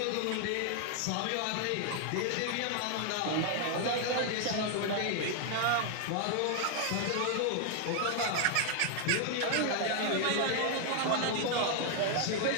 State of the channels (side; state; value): both; different; correlation 0.00